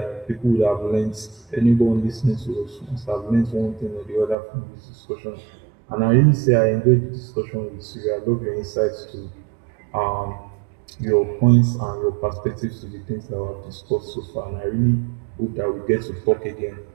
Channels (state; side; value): drops out; left; at 4.4 s